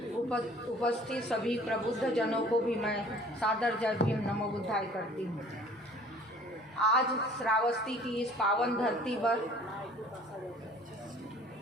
उपस्थित सभी प्रबुद्ध जनों को भी मैं सादर जय भीम नमो बुद्धाय करती हूँ। आज श्रावस्ती की इस पावन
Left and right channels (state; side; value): normal; both; correlation 0.51